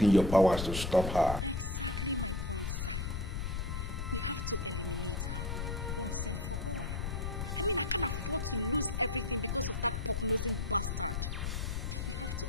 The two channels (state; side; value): noise; left; rumble, 2 dB below the sound